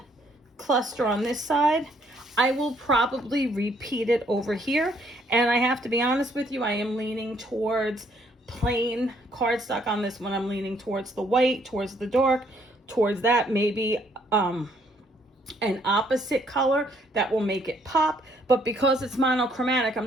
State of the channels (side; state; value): both; normal; correlation 0.67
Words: cluster on this side, I will probably repeat it over here. And I have to be honest with you, I am leaning towards plain cardstock on this one. I'm leaning towards the white, towards the dark, towards that, maybe an opposite color that will make it pop. But because it's monochromatic, I'm